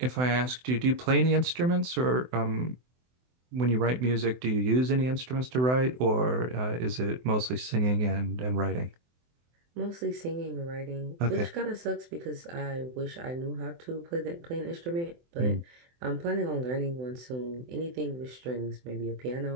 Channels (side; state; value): left; late; 24 ms